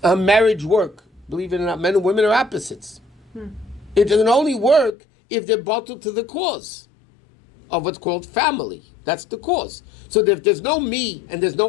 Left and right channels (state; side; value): drops out; right; at 4.9 s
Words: a marriage work? Believe it or not, men and women are opposites. It can only work if they're bottled to the cause of what's called family. That's the cause. So if there's no me, and there's